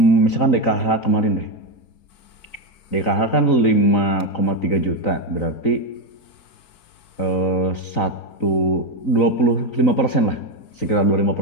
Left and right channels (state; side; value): late; right; 3.9 ms